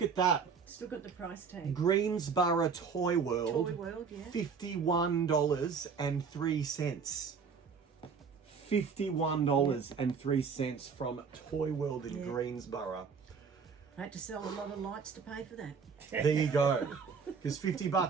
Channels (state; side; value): quieter; left; 5.8 dB